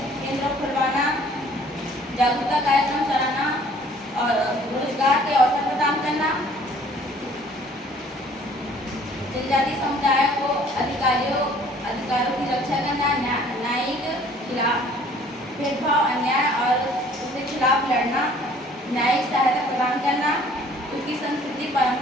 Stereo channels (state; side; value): normal; both; correlation 0.55